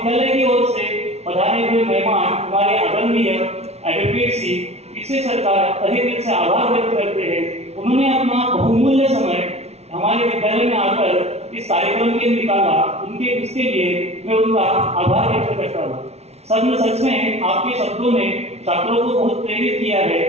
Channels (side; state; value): left; late; 0.31 ms